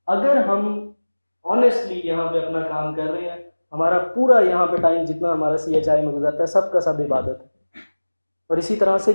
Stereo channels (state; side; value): inverted; both; correlation -1.00